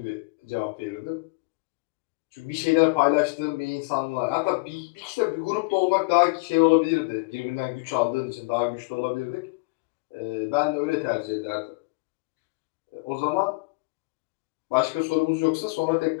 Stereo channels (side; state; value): right; quieter; 29.6 dB